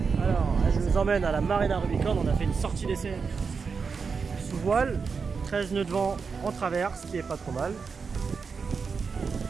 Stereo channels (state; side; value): quieter; left; 5.3 dB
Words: Alors, je vous emmène à la Marina Rubicon. On a fait une sortie d'essai sous voile, 13 nœuds de vent en travers, ce qui est pas trop mal.